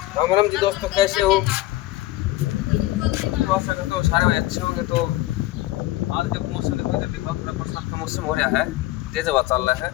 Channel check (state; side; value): quieter; right; 17.2 dB